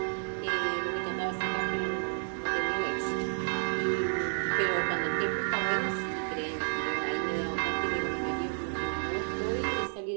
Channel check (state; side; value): silent; left; digital silence